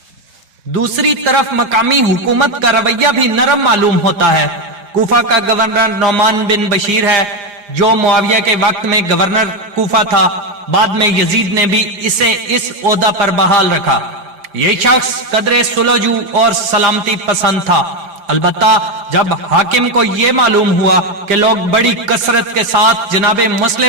دوسری طرف مقامی حکومت کا رویہ بھی نرم معلوم ہوتا ہے۔ کوفہ کا گورنر نعمان بن بشیر ہے، جو معاویہ کے وقت میں گورنر کوفہ تھا۔ بعد میں یزید نے بھی اسے اس عہدہ پر بحال رکھا۔ یہ شخص قدر سلوجو اور سلامتی پسند تھا۔ البتہ جب حاکم کو یہ معلوم ہوا کہ لوگ بڑی کثرت کے ساتھ جناب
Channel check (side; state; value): left; late; 4.9 ms